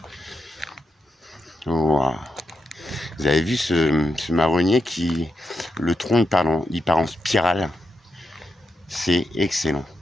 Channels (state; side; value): normal; both; correlation 0.85